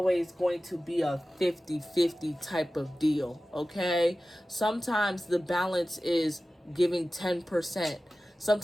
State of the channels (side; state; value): both; normal; correlation 0.96